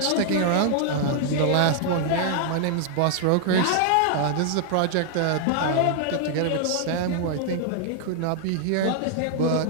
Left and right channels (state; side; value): different; both; correlation 0.00